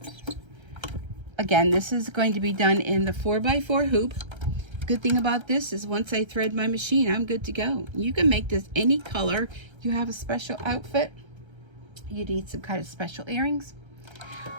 again, this is going to be done in the 4x4 hoop. Good thing about this is once I thread my machine, I'm good to go. You can make this any color. You have a special outfit, you need some kind of special earrings.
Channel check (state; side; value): late; left; 1.3 ms